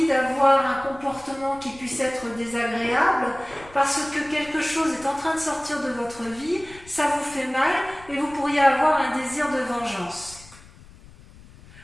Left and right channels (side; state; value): left; noise; rumble, 21 dB below the sound